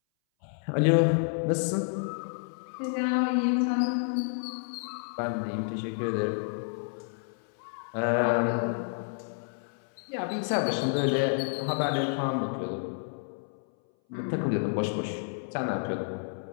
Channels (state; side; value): silent; right; 58 dB below the other